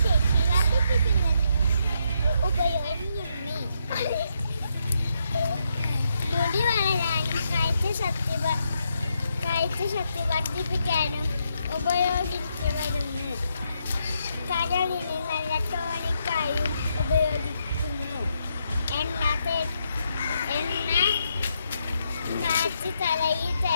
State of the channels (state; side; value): inverted; both; correlation -0.79